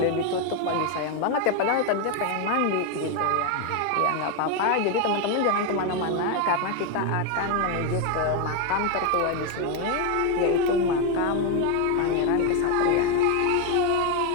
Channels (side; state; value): both; different; correlation 0.02